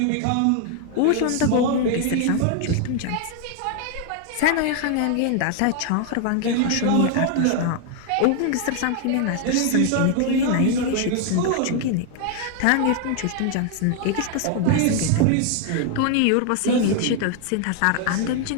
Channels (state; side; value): different; both; correlation 0.00